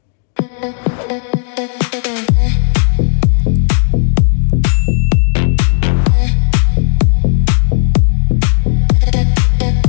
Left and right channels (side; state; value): right; silent; digital silence